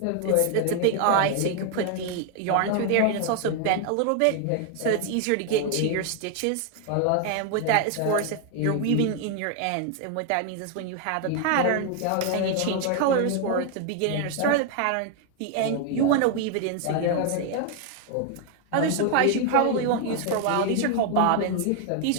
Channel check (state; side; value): different; both; correlation 0.00